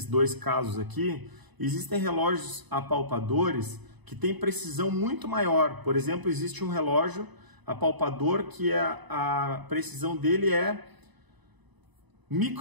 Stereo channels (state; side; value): late; left; 1.0 ms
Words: dois casos aqui, existem relógios apalpadores que têm precisão muito maior. Por exemplo, existe um relógio apalpador que a precisão dele é